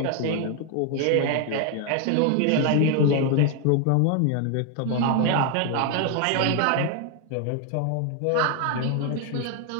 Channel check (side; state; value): both; different; correlation 0.01